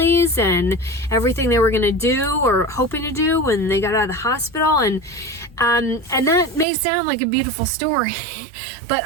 and everything they were going to do or hoping to do when they got out of the hospital. And that may sound like a beautiful story, but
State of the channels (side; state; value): left; drops out; at 6.7 s